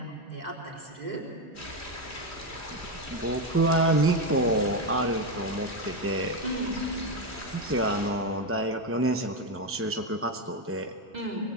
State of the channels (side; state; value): both; normal; correlation 0.08